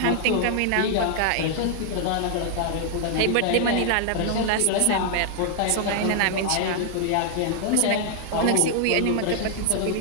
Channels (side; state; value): both; different; correlation 0.00